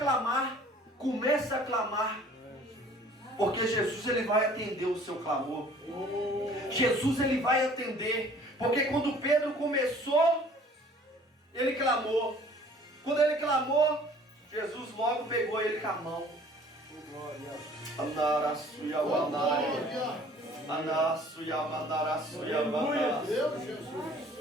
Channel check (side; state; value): both; normal; correlation 0.52